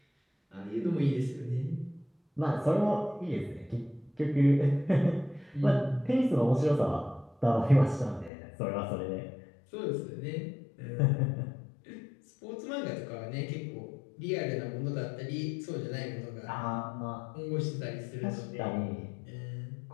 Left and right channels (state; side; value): drops out; right; at 8.3 s